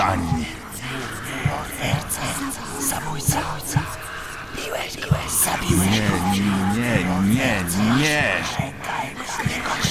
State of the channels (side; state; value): both; identical; correlation 1.00